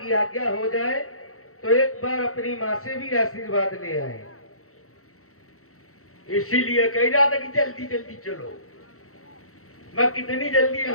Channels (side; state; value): right; late; 0.64 ms